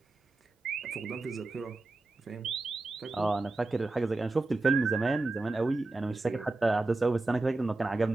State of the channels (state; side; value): quieter; left; 3.1 dB